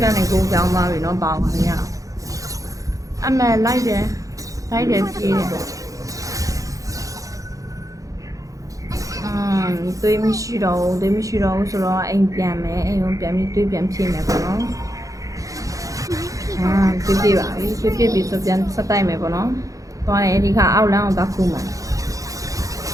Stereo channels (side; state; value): left; late; 0.16 ms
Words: ကနေကိုကြောင်းသွားပြီနော်ပေါင်းပါရအမှန်လိုက်တယ်ပြေးတယ်တွေးမရှိတော့ဘူးဆိုတော့အိမ်ပြန်မယ်အိမ်ကိုပြန်ပြီးတွေးပြန်ဖြည့်မယ်ပေါ့နော်ပြေးပါပြီပြေးပြီးဆိုပြန်ဆက်တိုက်မယ်ပေါ့နော်သွားတယ်ဒီခါအောက်လမ်းကိုသွားခုမယ်